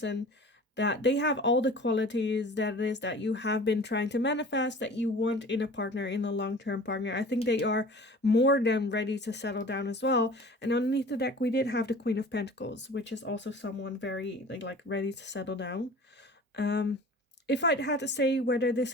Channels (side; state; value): both; normal; correlation 0.42